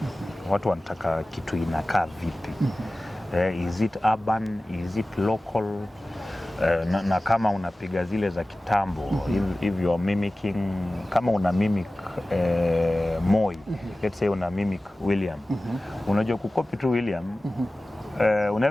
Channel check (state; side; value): normal; both; correlation 0.97